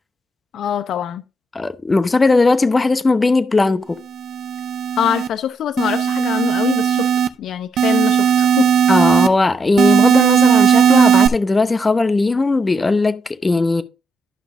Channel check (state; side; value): normal; both; correlation 0.77